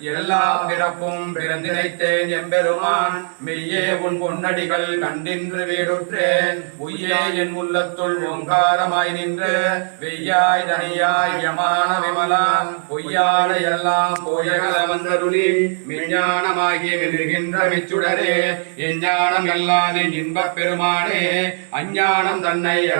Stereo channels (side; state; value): left; silent; 63 dB below the other